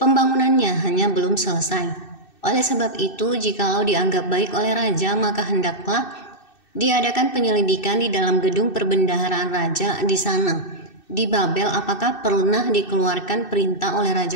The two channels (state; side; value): late; right; 2.6 ms